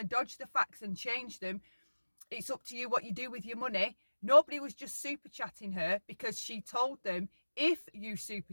dodge the facts and change them. It's up to you what you do with your money. Nobody was just super chatting her because she told them, if you super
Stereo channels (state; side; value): inverted; both; correlation -1.00